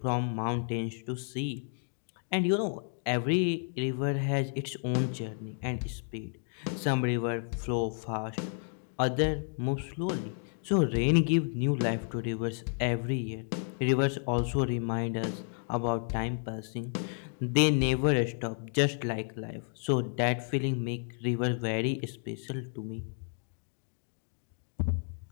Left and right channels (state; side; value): silent; right; 56 dB below the other